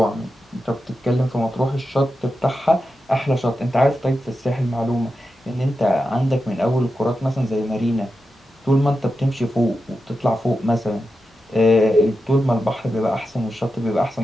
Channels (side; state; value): both; normal; correlation 0.90